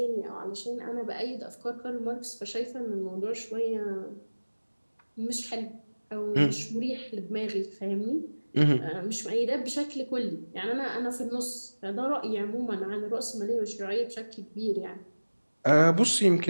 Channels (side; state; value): both; inverted; correlation -1.00